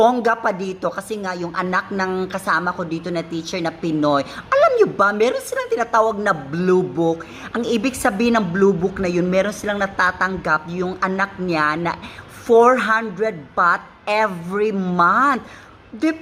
pa dito kasi nga yung anak ng kasama ko dito na teacher na Pinoy. Alam nyo ba, meron silang tinatawag na Blue Book. Ang ibig sabihin ng Blue Book na yun, meron silang natatanggap yung anak niya na 400 baht every month.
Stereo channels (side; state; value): both; identical; correlation 1.00